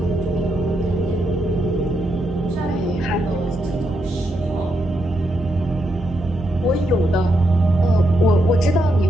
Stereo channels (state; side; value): normal; both; correlation 0.81